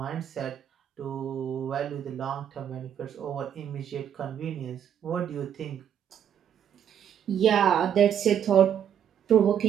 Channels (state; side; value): quieter; left; 9.2 dB